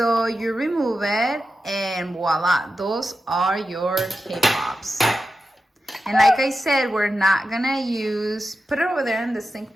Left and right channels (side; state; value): both; normal; correlation 0.91